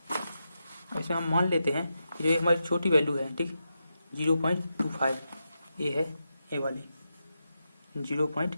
ऐसे हम मान लेते हैं कि जो हमारी छोटी वैल्यू है, ठीक 0.25 ये है, ए वाली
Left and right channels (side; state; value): both; inverted; correlation -0.87